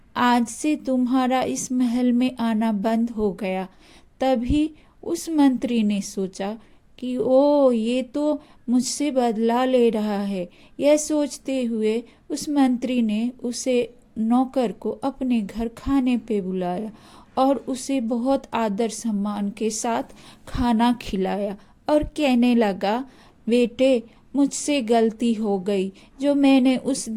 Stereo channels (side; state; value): both; identical; correlation 1.00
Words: आज से तुम्हारा इस महल में आना बंद हो गया। तभी उस मंत्री ने सोचा कि ओ, ये तो मुझसे बदला ले रहा है। यह सोचते हुए उस मंत्री ने उसे नौकर को अपने घर खाने पे बुलाया और उसे बहुत आदर सम्मान के साथ खाना खिलाया और कहने लगा, बेटे, मुझसे गलती हो गई जो मैंने उस